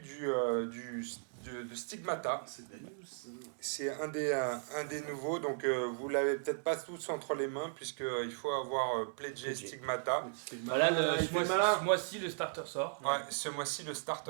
de Stigmata. C'est de la news, ça. C'est un des nouveaux, donc vous l'avez peut-être pas tous entre les mains, puisqu'il faut avoir pledgé Pledgé. Stigmata. Voilà, il fait le malin. ce mois-ci, le starter sort. Ouais, ce mois-ci, le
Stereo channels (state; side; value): silent; left; digital silence